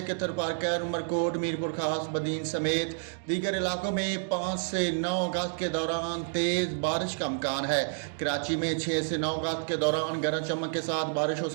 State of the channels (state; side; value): silent; left; digital silence